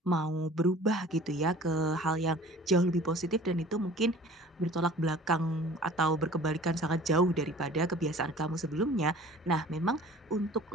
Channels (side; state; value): both; normal; correlation 0.46